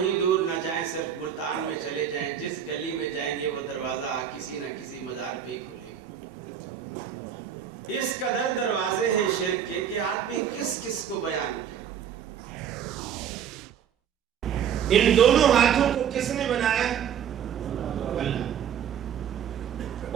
دور نہ جائیں، صرف ملتان میں چلے جائیں، جس گلی میں جائیں گے وہ دروازہ کسی نہ کسی مزار پہ ہی کھلے گا. اس قدر دروازے ہیں شرک کے کہ آدمی کس کس کو بیان کرے. ان دونوں ہاتھوں کو کس نے بنایا؟ اللہ.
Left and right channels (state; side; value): quieter; left; 8.7 dB